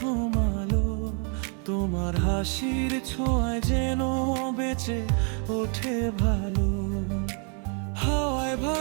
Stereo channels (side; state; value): left; quieter; 39.8 dB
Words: আলো, তোমার হাসির ছোঁয়ায় যেন বেঁচে ওঠে ভালো। হাওয়ায়